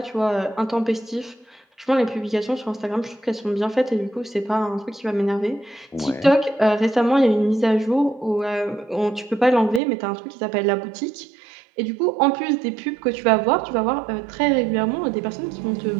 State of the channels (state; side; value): drops out; left; at 9.8 s